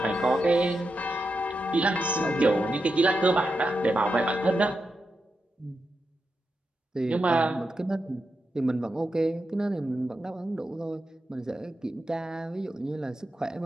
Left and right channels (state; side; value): normal; both; correlation 0.87